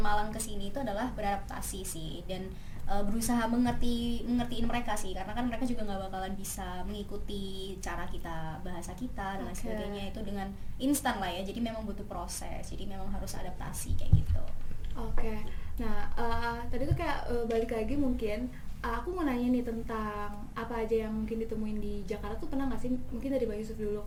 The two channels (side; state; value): both; identical; correlation 1.00